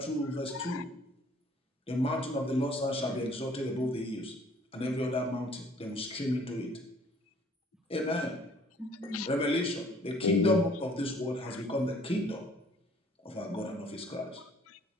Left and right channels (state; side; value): normal; both; correlation 0.57